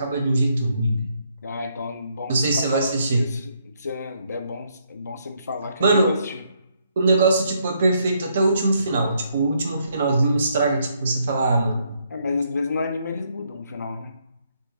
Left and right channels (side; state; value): both; inverted; correlation -0.73